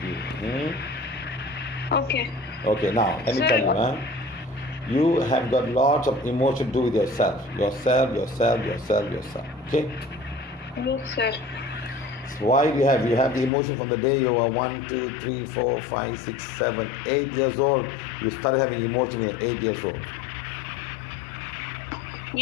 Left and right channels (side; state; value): right; drops out; at 13.5 s